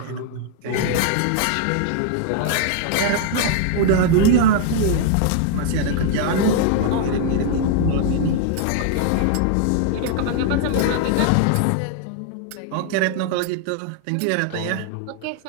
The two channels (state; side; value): different; both; correlation -0.01